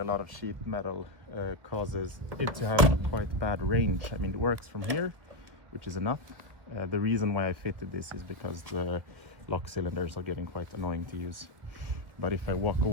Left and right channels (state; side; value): late; left; 1.5 ms